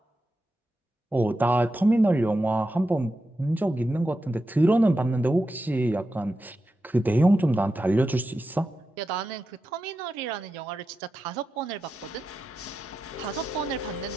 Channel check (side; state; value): both; normal; correlation 0.89